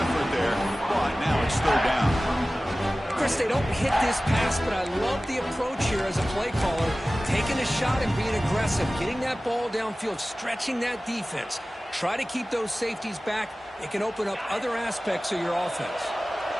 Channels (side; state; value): both; normal; correlation 0.97